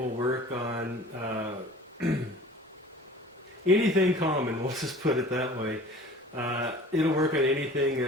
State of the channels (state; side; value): normal; both; correlation 0.45